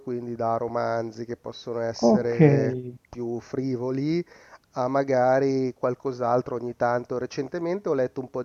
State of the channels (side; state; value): both; identical; correlation 1.00